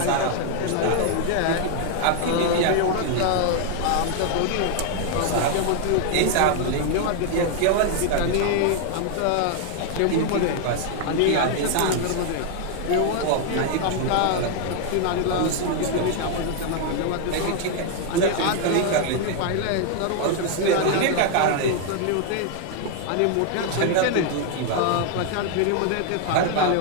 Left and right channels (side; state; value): both; different; correlation 0.00